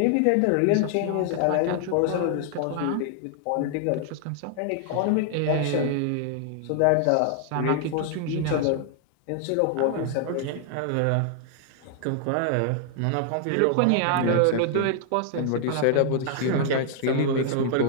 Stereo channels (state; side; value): different; both; correlation 0.00